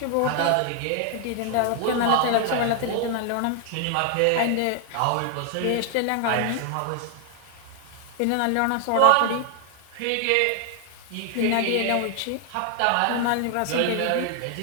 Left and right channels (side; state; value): both; different; correlation 0.00